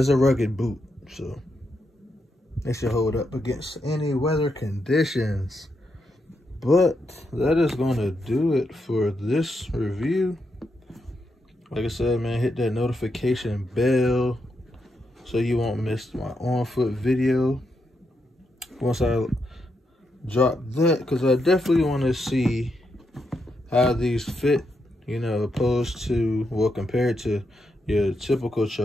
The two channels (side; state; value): both; normal; correlation 0.82